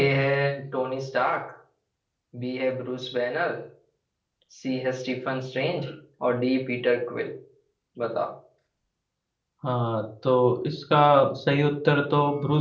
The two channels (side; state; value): both; identical; correlation 1.00